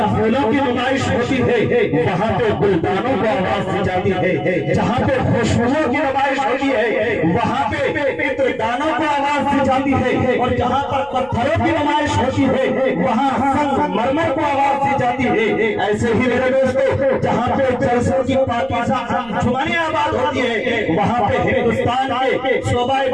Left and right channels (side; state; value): right; noise; rumble, 25 dB below the sound